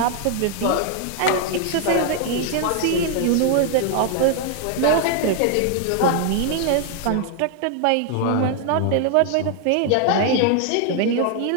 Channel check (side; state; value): both; different; correlation 0.00